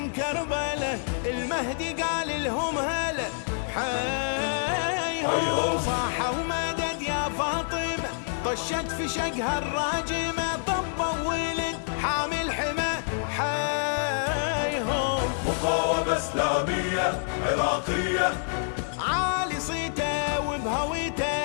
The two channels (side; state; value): right; silent; 60 dB below the other